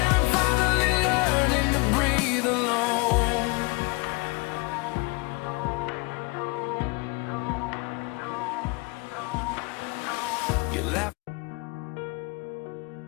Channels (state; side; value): quieter; right; 27.1 dB